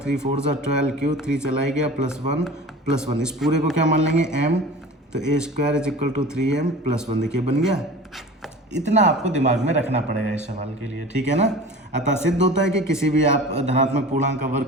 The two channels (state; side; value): normal; both; correlation 0.38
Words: 4 जा 12q, 3 चला ही गया, +1 + 1। इस पूरे को क्या मान लेंगे, m, तो a² = 3m+1। देखिए बन गया। इतना आपको दिमाग में रखना पड़ेगा इस सवाल के लिए, ठीक है ना? अतः सिद्ध होता है कि किसी भी आप धनात्मक पूर्णांक का